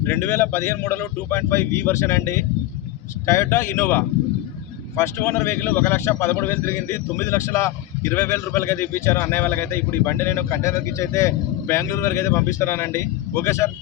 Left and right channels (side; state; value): right; quieter; 15.3 dB